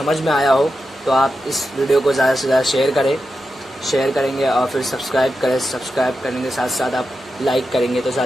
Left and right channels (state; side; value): normal; both; correlation 0.89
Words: में आया हो तो आप इस वीडियो को ज़्यादा से ज़्यादा शेयर करेंगे और फिर सब्सक्राइब करने के साथ साथ आप लाइक करेंगे तो